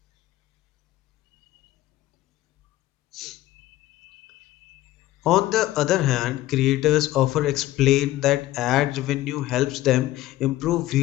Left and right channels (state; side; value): quieter; right; 15.7 dB